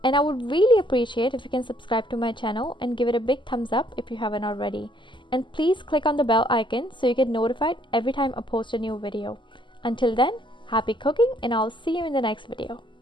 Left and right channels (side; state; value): right; late; 0.24 ms